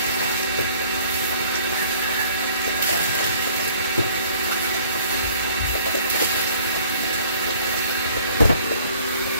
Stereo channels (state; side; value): inverted; both; correlation -0.55